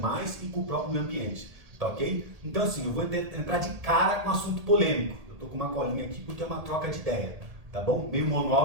e com o próprio meio ambiente. Tá ok? Então assim, eu vou entrar de cara com um assunto polêmico. Eu estou com uma colinha aqui porque é uma troca de ideia. Tá bom? Meio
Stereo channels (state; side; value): late; left; 1.8 ms